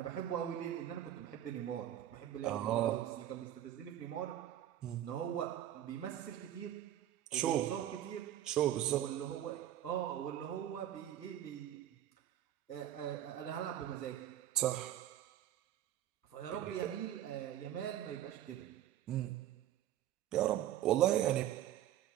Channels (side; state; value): left; quieter; 11.9 dB